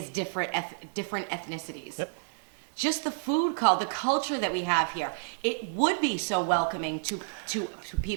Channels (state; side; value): silent; left; digital silence